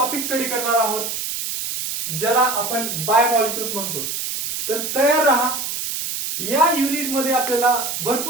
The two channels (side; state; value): right; noise; hiss, 4 dB below the sound